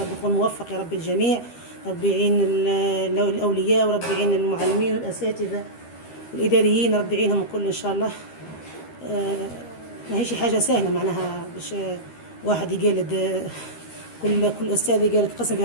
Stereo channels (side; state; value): right; late; 13 ms